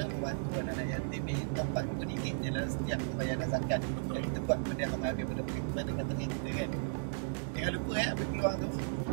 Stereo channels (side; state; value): left; silent; digital silence